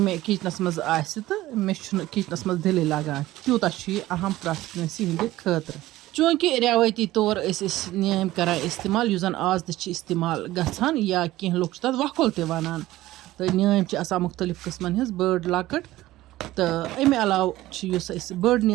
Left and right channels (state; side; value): quieter; left; 16.4 dB